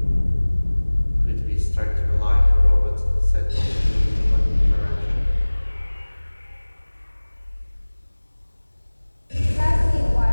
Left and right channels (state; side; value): inverted; both; correlation -1.00